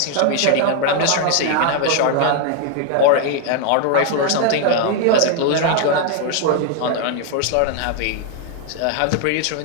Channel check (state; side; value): different; both; correlation 0.00